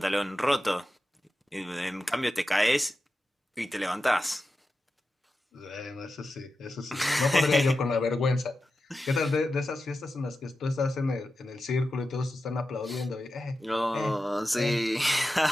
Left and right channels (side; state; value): both; normal; correlation 0.92